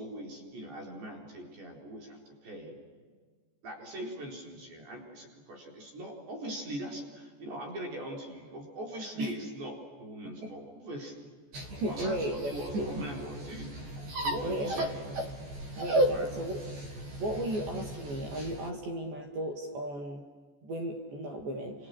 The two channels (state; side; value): late; left; 14 ms